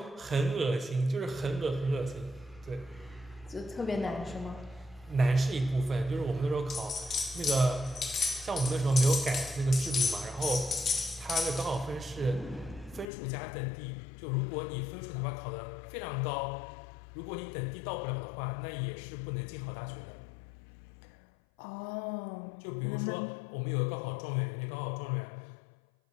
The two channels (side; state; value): right; drops out; at 13.1 s